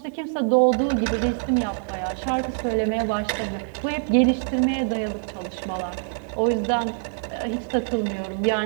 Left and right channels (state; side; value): silent; left; digital silence